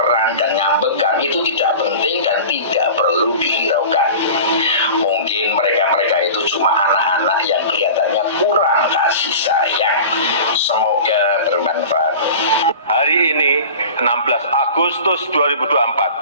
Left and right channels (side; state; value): both; inverted; correlation -0.37